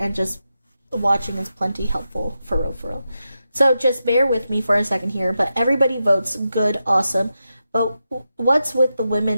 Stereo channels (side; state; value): both; inverted; correlation -0.88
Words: just watching is plenty helpful, for real. So just bear with me for a second here, but everybody votes good, awesome. But what's with the